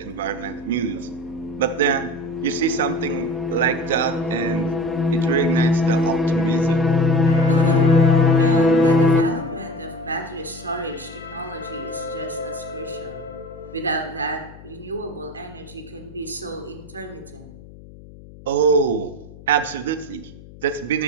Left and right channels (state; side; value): noise; left; hum, 19 dB below the sound